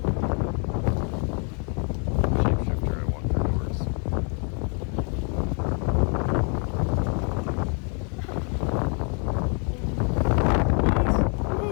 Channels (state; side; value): quieter; right; 39.2 dB